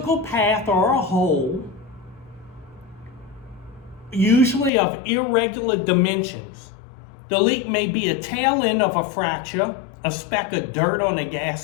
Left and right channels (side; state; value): right; drops out; at 4.7 s